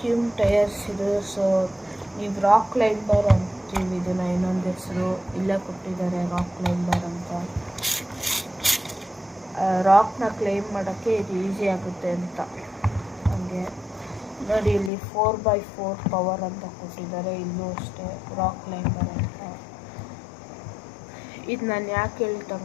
ಟೈರ್ಸ್ ಇದು. ಸೊ ನೀವು ರಾಕ್ ಕ್ಲೈಂಬರ್ ಅಂತೀವಿ ಇದನ್ನು, ಇನ್ನೊಂದು ಹೆಸರು ಇಲ್ಲೇ ಕೊಟ್ಟಿದ್ದಾರೆ, ರಾಕ್ ಕ್ಲೈಂಬರ್ ಅಂತ. ರಾಕ್ನ ಕ್ಲೈಮ್ ಮಾಡೋಕ್ಕೆ ಇದು ಈಸಿ ಆಗುತ್ತೆ ಅಂತ. ಹಾಗೆ ನೋಡಿ ಇಲ್ಲಿ 4x4 ಪವರ್ ಅಂತ ಕೊಟ್ಟಿದ್ದಾರೆ, ಇಲ್ಲೂ ಅಷ್ಟೇ ರಾಕ್ ಕ್ಲೈಂಬರ್ ಅಂತ. ಇದು ನಾನು ಯಾಕೆ ಹೇಳಿ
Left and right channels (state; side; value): drops out; right; at 14.9 s